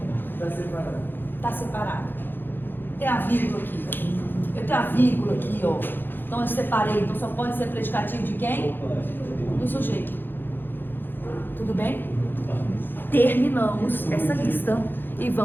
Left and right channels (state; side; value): late; right; 0.097 ms